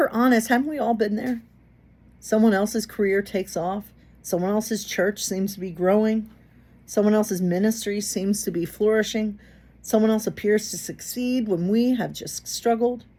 honest, haven't we all been there? Someone else's career takes off. Someone else's church seems to be growing. Someone else's ministry seems to be flourishing. Someone else appears to succeed when we have just struggled.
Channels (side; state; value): both; identical; correlation 1.00